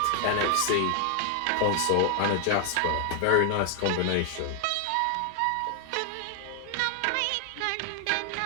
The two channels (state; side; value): different; both; correlation 0.00